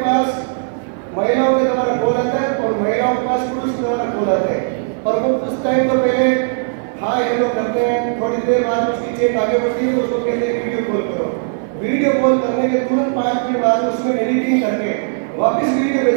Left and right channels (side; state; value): left; silent; 57 dB below the other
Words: महिलाओं के द्वारा कॉल आता है और महिलाओं के पास पुरुष के द्वारा कॉल आता है, और वो कुछ टाइम तो पहले हाँ ये लोग करते हैं, थोड़ी देर बाद उसकी चेक आगे बढ़ती है तो उसको कहते हैं वीडियो कॉल करो। वीडियो कॉल करने के तुरंत 5 मिनट बाद उसमें एडिटिंग करके वापस वीडियो